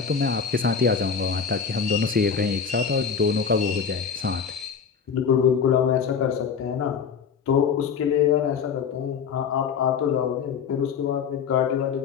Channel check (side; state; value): right; quieter; 6.5 dB